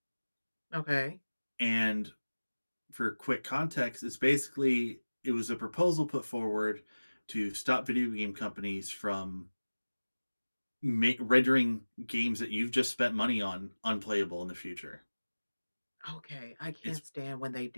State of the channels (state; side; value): inverted; both; correlation -1.00